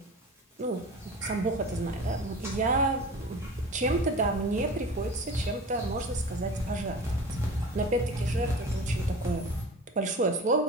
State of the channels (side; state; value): both; normal; correlation 0.37